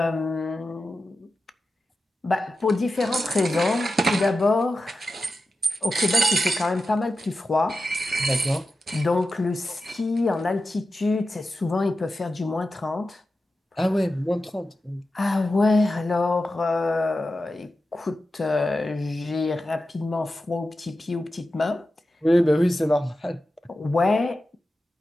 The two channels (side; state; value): both; normal; correlation 0.92